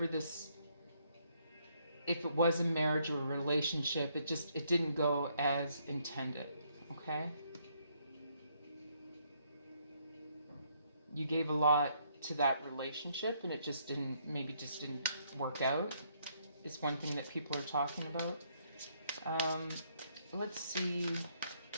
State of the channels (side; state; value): both; inverted; correlation -0.70